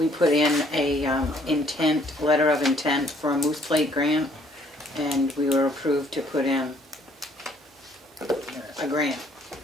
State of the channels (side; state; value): both; normal; correlation 0.63